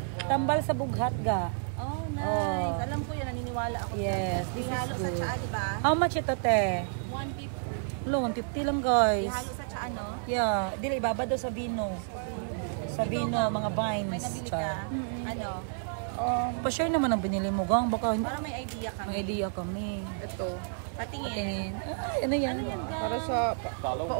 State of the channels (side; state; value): left; silent; 58 dB below the other